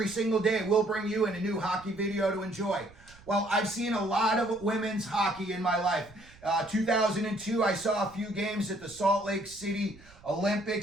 single day we'll bring you in a new hockey video to enjoy. Well, I've seen a lot of women's hockey in my life. 2002, I saw a few games at the Salt Lake City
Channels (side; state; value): right; noise; rumble, 23 dB below the sound